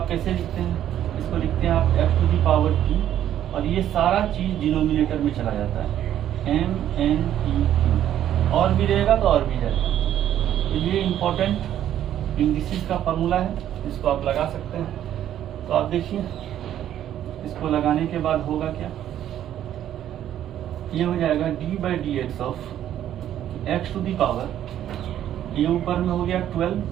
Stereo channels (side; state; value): left; quieter; 11.2 dB